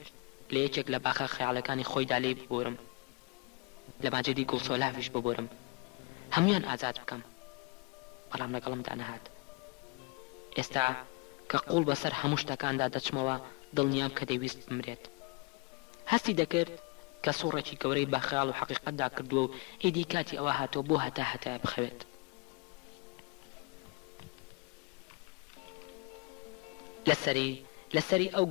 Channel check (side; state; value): right; quieter; 28.8 dB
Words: لە یەکێک لە باخە خەیاڵەکانی خۆیدا لێ ببۆرم لە ماجدی گوڵسۆلافیش ببۆرم هەمویان ئازاد بکەم بەڵام لەگەڵمدا نەهات ئێستا کە قوڵ بەسەر هەموو شتەکاندا دەچمەوە دڵنیام کە دەیویست بمرێت هەستی دەکرد کە سوڕێکی گەورەی با خەیاڵ و حەقیقەتدا کردووە و ئیدی کاتی ئەوە هاتۆ بۆ هەتا بخەوێت لەسەری ئەو